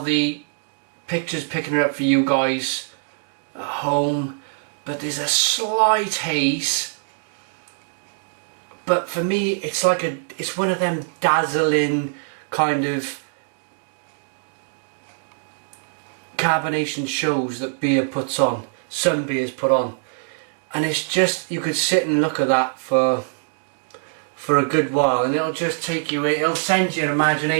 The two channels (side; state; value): left; silent; digital silence